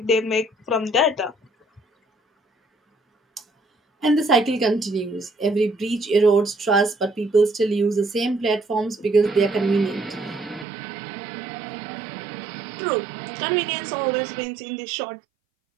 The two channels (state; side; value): drops out; left; at 10.7 s